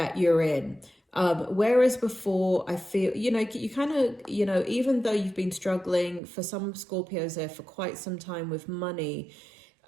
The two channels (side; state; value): left; drops out; at 6.2 s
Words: you're in. Whereas before, I feel, you kind of, even though you've been struggling for some Scorpios there for quite some time with money,